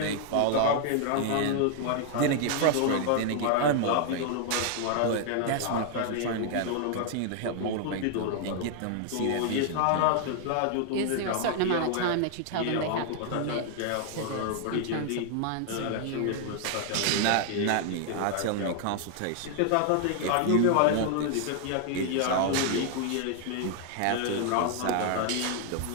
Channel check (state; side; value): different; both; correlation 0.00